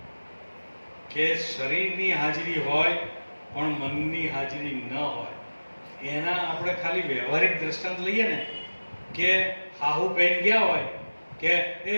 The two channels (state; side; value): inverted; both; correlation -1.00